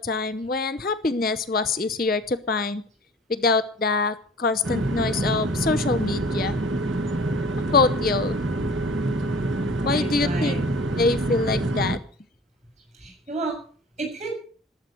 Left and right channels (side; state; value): both; normal; correlation 0.43